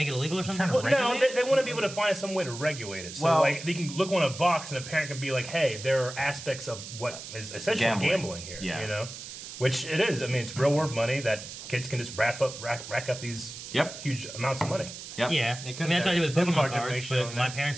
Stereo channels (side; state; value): right; noise; hiss, 11 dB below the sound